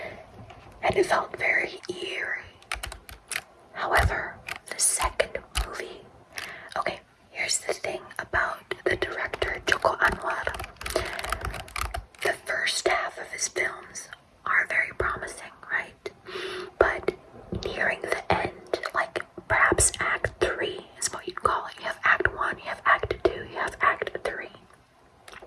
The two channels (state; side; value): identical; both; correlation 1.00